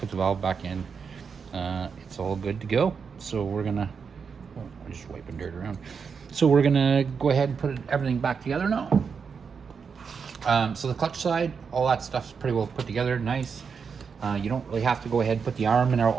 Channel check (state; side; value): quieter; left; 6.0 dB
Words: the valve back in. It's all good to go. So we're gonna, I'm just wiping dirt around. So we're gonna go ahead and put everything back together now. So the clutch side, all that stuff's pretty well put together, nice. You don't really have to go ahead and put the arm and